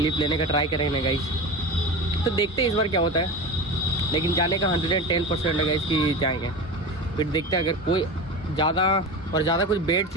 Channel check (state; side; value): normal; both; correlation 0.28